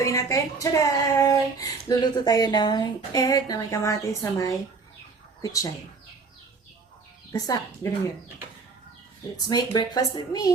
natin? Tcharan! Luluto tayo ng egg na may kamatis sa may kutsay. Basta, ganun yun. Let's make breakfast with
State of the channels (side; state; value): left; quieter; 4.5 dB